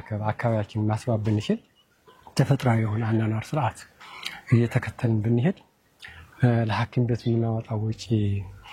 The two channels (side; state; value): both; identical; correlation 1.00